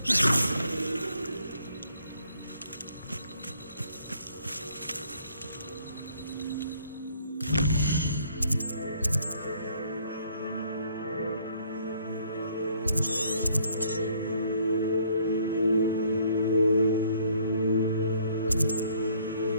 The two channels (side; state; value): both; inverted; correlation -0.64